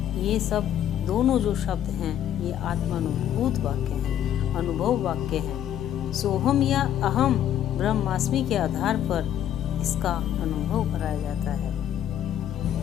ये सब दोनों जो शब्द हैं ये आत्मानुभूत वाक्य हैं, अनुभव वाक्य हैं। सोहम या अहम ब्रह्मास्मि के आधार पर इसका अनुभव कराया जाता है।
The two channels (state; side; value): quieter; right; 10.7 dB